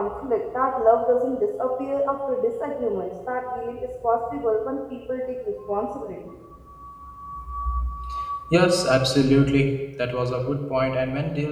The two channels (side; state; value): both; identical; correlation 1.00